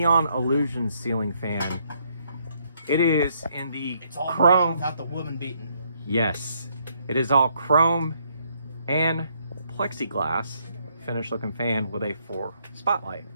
Illusion ceiling fan. It is in the all chrome without the woman beaten. Yes, it is all chrome and plexiglass finish looking fan with a 4 spotlight.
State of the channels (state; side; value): inverted; both; correlation -0.71